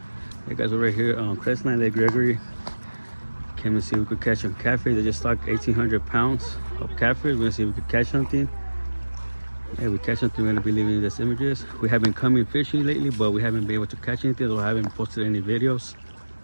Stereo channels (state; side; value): inverted; both; correlation -1.00